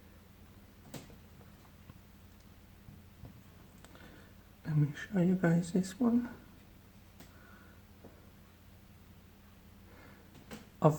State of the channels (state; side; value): identical; both; correlation 1.00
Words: Let me show you guys this one. I've